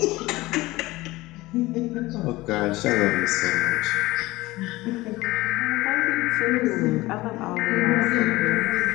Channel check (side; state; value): right; quieter; 19.4 dB